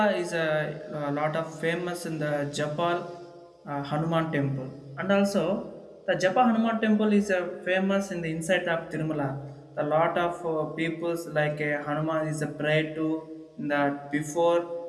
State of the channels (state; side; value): identical; both; correlation 1.00